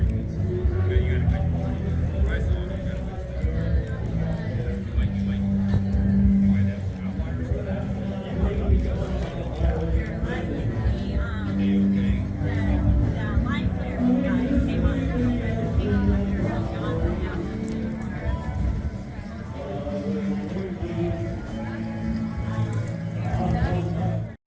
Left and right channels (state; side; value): identical; both; correlation 1.00